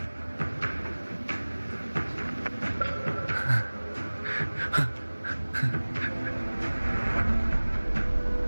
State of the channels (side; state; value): both; inverted; correlation -1.00